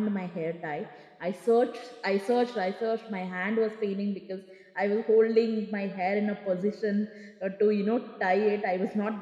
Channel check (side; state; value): both; identical; correlation 1.00